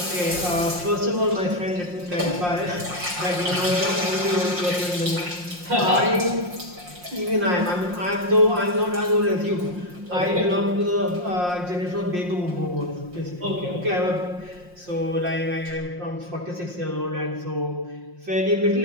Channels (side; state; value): left; late; 5.6 ms